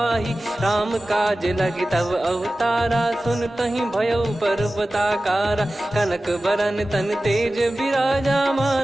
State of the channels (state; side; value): normal; both; correlation 0.96